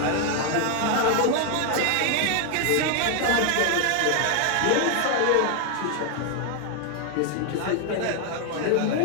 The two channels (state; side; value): different; both; correlation 0.00